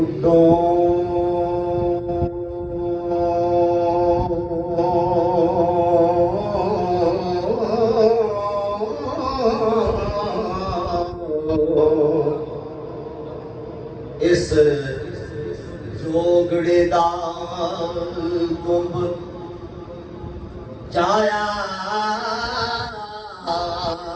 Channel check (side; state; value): both; identical; correlation 1.00